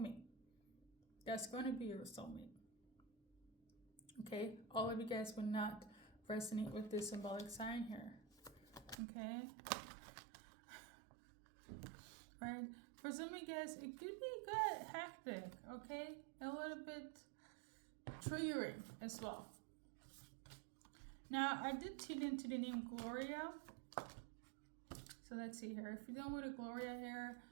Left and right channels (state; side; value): drops out; left; at 9.0 s